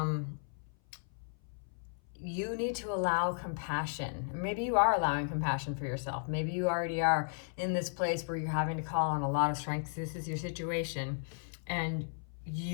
You need to allow compassion. Maybe you are allowing compassion for yourself. Maybe you already are in this place where you're having to call on a lot of strength. This is your situation, and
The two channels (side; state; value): right; silent; 55 dB below the other